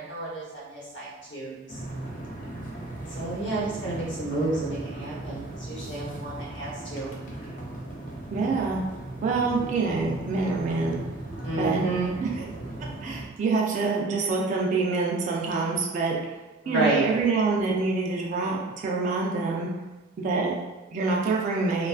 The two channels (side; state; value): left; quieter; 3.1 dB